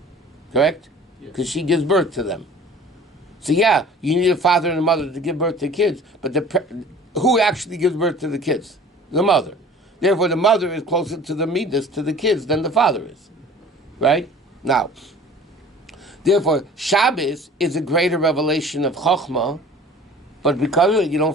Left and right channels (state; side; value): normal; both; correlation 0.46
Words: Correct? Because she gives birth to them. So yeah, you need a father and a mother to give birth to kids, but who actually gives birth to the kids? The mother. Therefore, the mother is closer to the midas, to the kids, than the father is. Right? Now, therefore, Shabbos is a greater revelation of Chochmah, but because of it, you